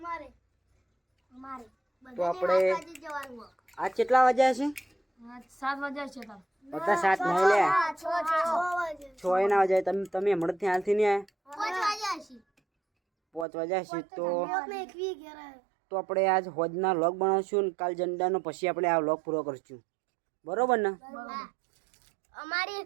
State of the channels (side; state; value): left; drops out; at 13.5 s